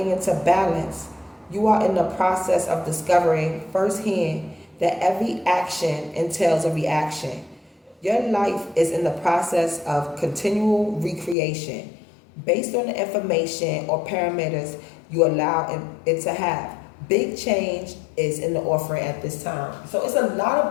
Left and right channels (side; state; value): right; drops out; at 11.4 s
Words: into balance, you are in the process of discovering firsthand that every action entails a reaction. Your life is in the process of continual recreation based on the information or parameters you allow it to have. Big change is in the offering at this time. So it's a lot of